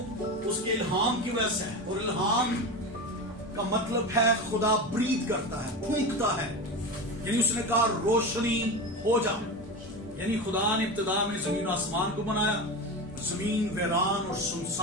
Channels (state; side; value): normal; both; correlation 0.24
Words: اس کے الہام کی وجہ سے ہے، اور الہام کا مطلب ہے خدا برید کرتا ہے، پھونکتا ہے، یعنی اس نے کہا روشنی ہو جا، یعنی خدا نے ابتدا میں زمین و آسمان کو بنایا، زمین ویران اور